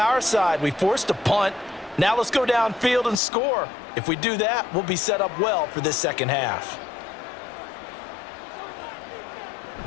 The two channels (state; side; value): drops out; right; at 3.2 s